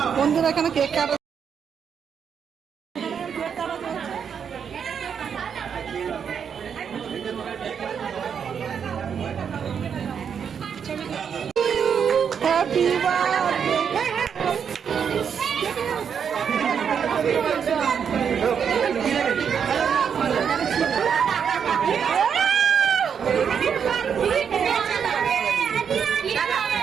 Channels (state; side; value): quieter; left; 7.3 dB